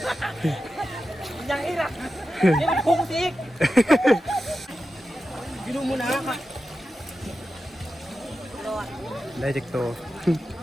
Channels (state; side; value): normal; both; correlation 0.91